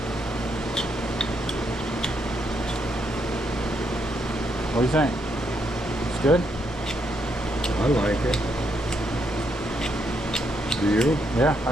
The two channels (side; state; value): both; normal; correlation 0.77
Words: What do you think? It's good? I like it. Do you? Yeah, I